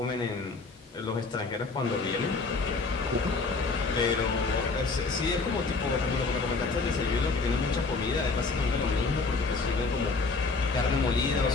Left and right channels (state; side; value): quieter; right; 4.0 dB